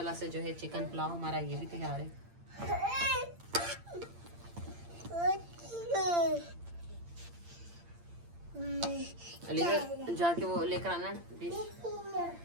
से जो है चिकन पुलाव हमारा ये भी तैयार है। जाके वो लेकर आना डिश।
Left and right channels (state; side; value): late; left; 8.7 ms